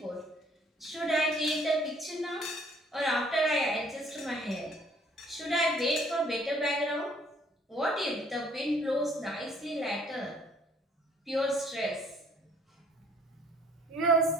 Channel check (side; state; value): both; normal; correlation 0.60